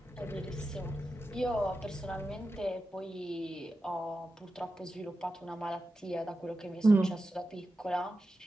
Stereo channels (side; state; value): both; normal; correlation 0.91